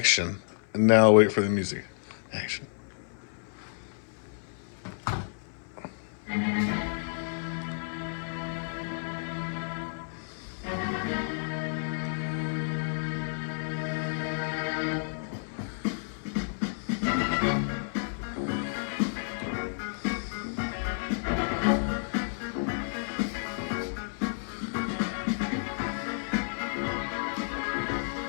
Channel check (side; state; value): right; silent; 57 dB below the other